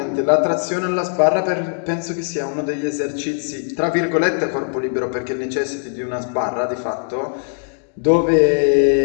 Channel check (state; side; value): silent; right; 57 dB below the other